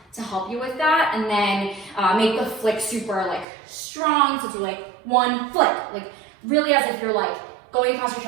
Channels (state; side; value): drops out; left; at 3.5 s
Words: help you with that, and then make the flick super like strong. So do like 1 flick, like really as if you're like going across your